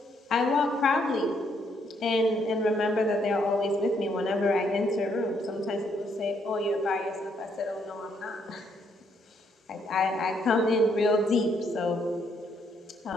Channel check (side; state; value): both; normal; correlation 0.72